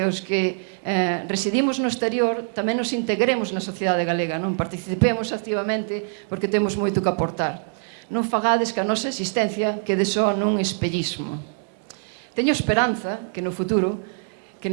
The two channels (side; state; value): left; silent; 63 dB below the other